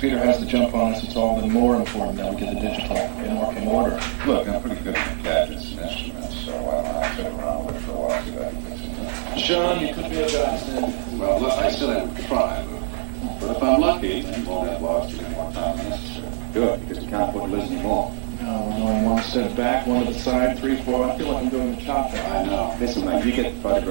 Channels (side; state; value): left; silent; 55 dB below the other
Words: has to jump on us, it's all been more important that we get the digital in working order. Look, I'm pretty good at gadgets and instruments, so I'll sit around with it for a while, see if I can fix it. Sean, you could be a godsend. Well, look, I said I would try, but if I'm lucky, then we'll have lost any more time than necessary. Good, because we can't afford to lose any more. No, we're going one step back, one to the side, 3, 4. I feel like I'm doing the chop down. I know. Listen, mate, you get the